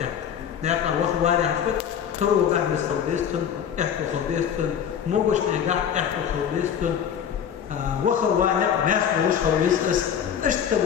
نعطى وخر ولا حفت ترو بعد خلبيستن احكو خلبيستن موجش نجاح احكو خلبيستن وخر وانا ناس موش خلبيستس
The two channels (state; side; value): quieter; right; 8.5 dB